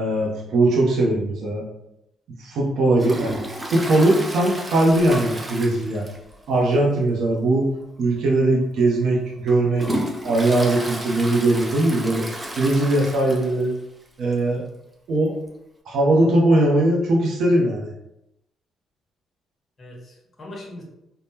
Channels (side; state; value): both; normal; correlation 0.78